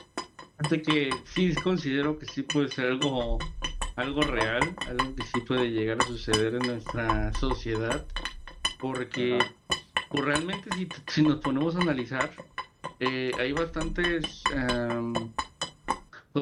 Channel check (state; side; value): identical; both; correlation 1.00